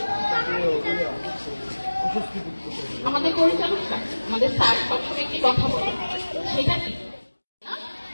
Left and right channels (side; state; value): both; inverted; correlation -1.00